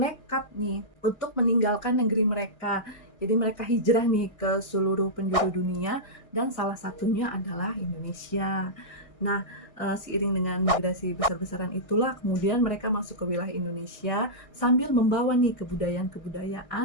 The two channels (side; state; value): right; late; 1.6 ms